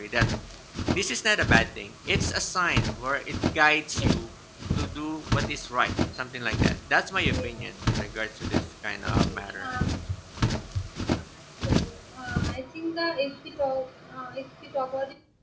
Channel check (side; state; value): both; identical; correlation 1.00